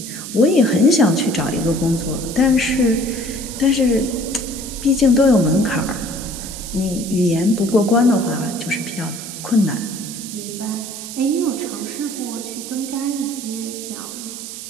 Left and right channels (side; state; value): right; noise; hiss, 10 dB below the sound